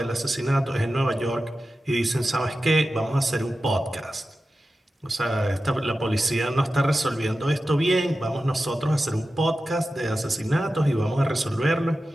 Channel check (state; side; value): normal; both; correlation 0.93